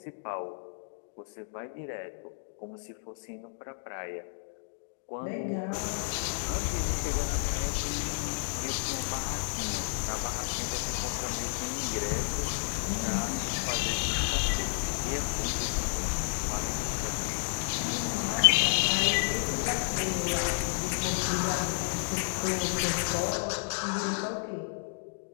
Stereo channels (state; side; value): silent; right; digital silence